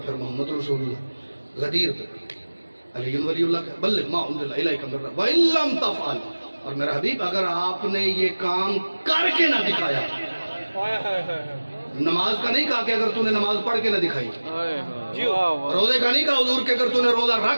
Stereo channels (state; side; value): inverted; both; correlation -1.00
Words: پھر محمد رسول اللہ۔ غدیر علی ولی اللہ کا بلغ ما انزل الیک من ربک وان لم تفعل، اور میرا حبیب اگر آپ نے یہ کام کر کے نہ دکھایا، نماز کا نہیں کہا کہ اگر تو نے نماز پڑھ کے نہ دکھائی، روزے کا نہیں کہا حضور کہ اگر تو نے روزہ